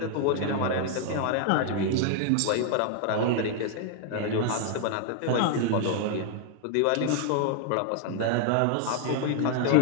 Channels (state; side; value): different; both; correlation 0.00